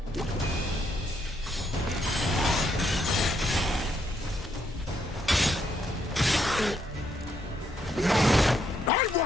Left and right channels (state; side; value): normal; both; correlation 0.75